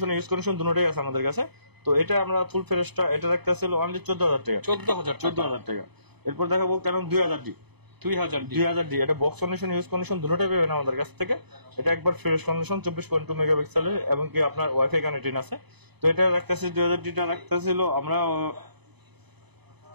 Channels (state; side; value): late; left; 0.99 ms